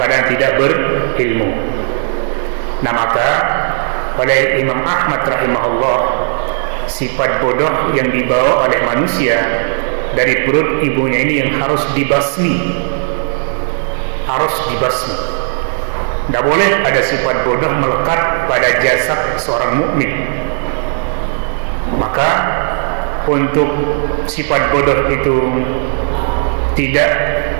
tidak berilmu. Nah, maka oleh Imam Ahmad rahimahullah, sifat bodoh yang dibawa oleh manusia dari perut ibunya ini yang harus dibasmi, harus dibasmi. Tidak boleh ada sifat bodoh melekat pada jasad seorang mukmin. Maka untuk sifat bodoh itu tidak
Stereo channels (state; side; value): silent; left; digital silence